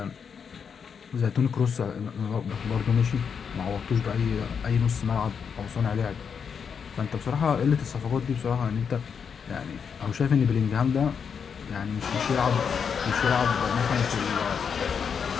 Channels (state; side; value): quieter; right; 6.7 dB